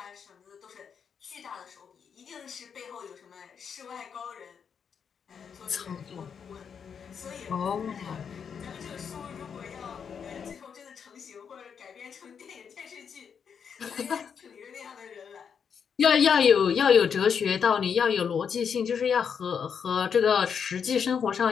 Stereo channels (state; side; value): quieter; right; 7.0 dB